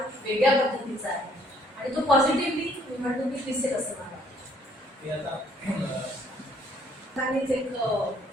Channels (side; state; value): both; normal; correlation 0.64